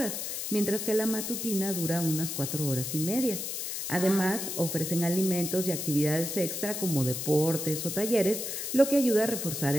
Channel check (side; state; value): left; noise; hiss, 4 dB below the sound